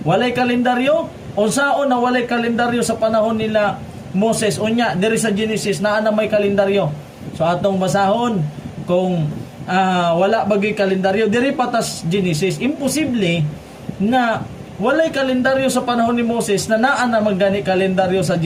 Walay kalendaryo? Unsaon na walay kalendaryo sa panahon nila Moses? Unya diri sa Genesis naa na may kalendaryo. So atong basahon kung wala bagay kalendaryo diri patas Genesis, imposible na walay kalendaryo sa panahon ni Moses na naa na magani kalendaryo sa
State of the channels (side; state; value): both; identical; correlation 1.00